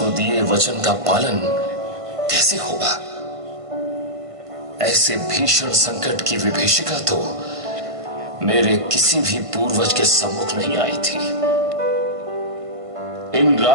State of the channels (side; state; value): left; late; 1.5 ms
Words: दिए वचन का पालन कैसे होगा? ऐसे भीषण संकट की विभीषिका तो मेरे किसी भी पूर्वज के सम्मुख नहीं आई थी। इन